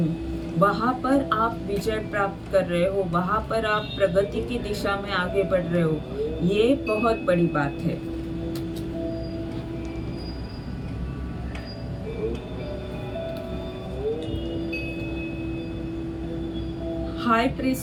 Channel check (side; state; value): both; identical; correlation 1.00